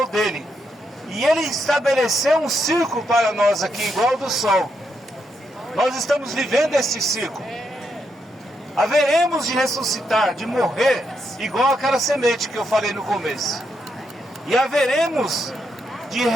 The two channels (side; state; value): both; normal; correlation 0.80